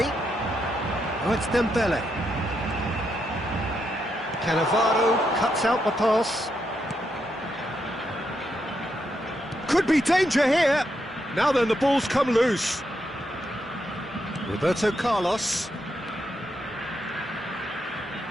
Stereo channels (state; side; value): normal; both; correlation 0.81